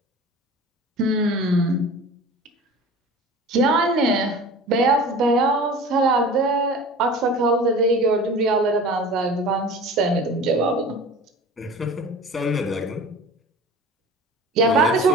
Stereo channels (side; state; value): both; normal; correlation 0.39